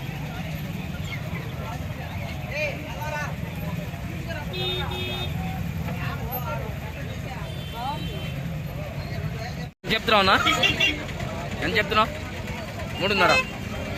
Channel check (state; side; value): identical; both; correlation 1.00